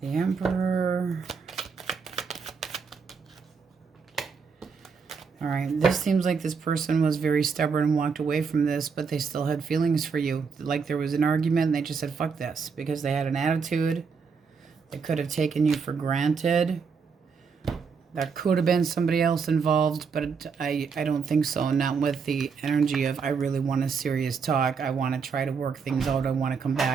The Emperor. All right, this seems like this person was very stubborn and walked away from this, but they still had feelings for you. Like there was an argument and they just said, fuck this, because they had an attitude. They could have taken you for granted. There could have been somebody else involved, but I don't think so. Not with the energy of, I really want a serious talk. I want to try to work things out. I want to come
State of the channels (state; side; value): quieter; left; 5.6 dB